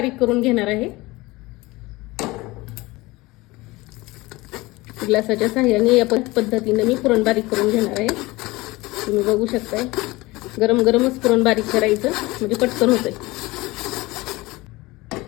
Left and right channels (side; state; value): right; quieter; 21.2 dB